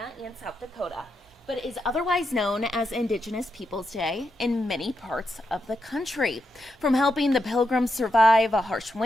and South Dakota, but is otherwise known as Indigenous Peoples Day in many parts of the country. From helping the Pilgrims survive a harsh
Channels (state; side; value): normal; both; correlation 0.84